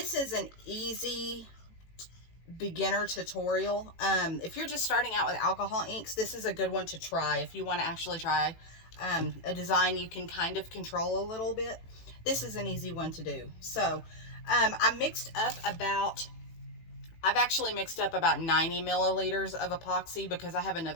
is an easy beginner tutorial. If you're just starting out with alcohol inks, this is a good one to try. If you want to actually try a design you can kind of control a little bit, this is an easy one to do. So I've actually mixed up about 90 milliliters of epoxy because I have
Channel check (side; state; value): right; late; 18 ms